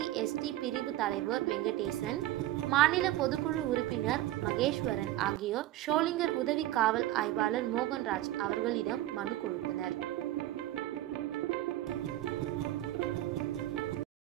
பிரிவு தலைவர் வெங்கடேசன், மாநில பொதுக்குழு உறுப்பினர் மகேஸ்வரன் ஆகியோர் ஷோலிங்கர் உதவி காவல் ஆய்வாளர் மோகன்ராஜ் அவர்களிடம் மனு கொடுத்தனர்.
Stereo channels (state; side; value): quieter; left; 14.9 dB